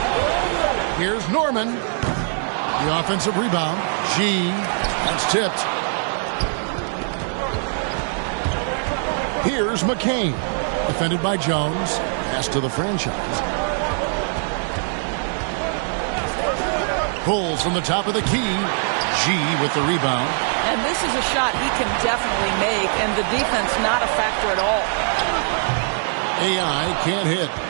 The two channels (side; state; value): left; silent; 57 dB below the other